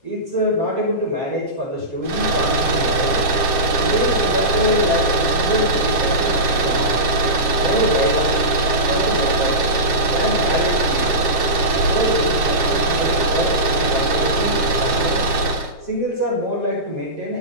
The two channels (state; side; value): late; right; 7.6 ms